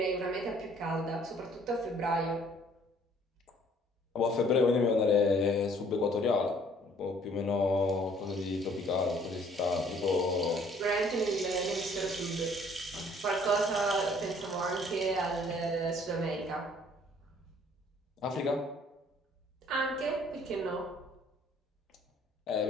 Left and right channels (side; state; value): both; normal; correlation 0.59